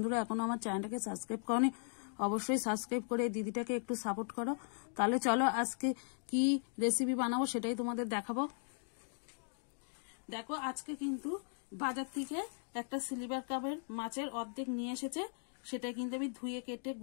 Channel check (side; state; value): right; silent; 52 dB below the other